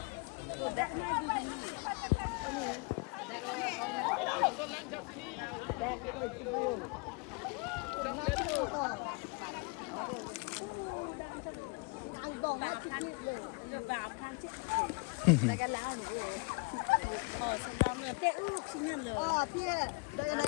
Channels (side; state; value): right; quieter; 30.2 dB